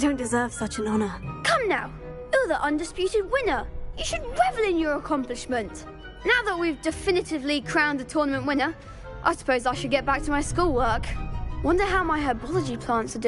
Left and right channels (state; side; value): identical; both; correlation 1.00